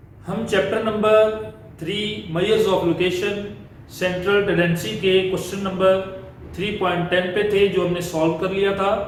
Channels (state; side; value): identical; both; correlation 1.00